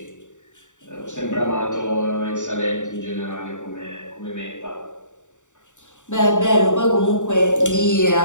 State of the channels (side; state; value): right; late; 0.85 ms